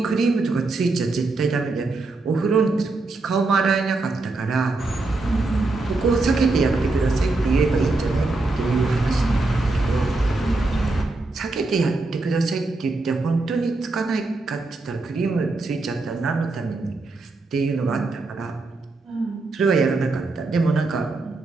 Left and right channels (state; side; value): quieter; left; 3.3 dB